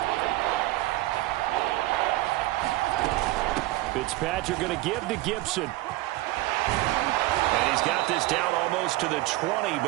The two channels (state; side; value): quieter; left; 18.2 dB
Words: Fitzpatrick going to give to Gibson. And he's got this down almost to the 20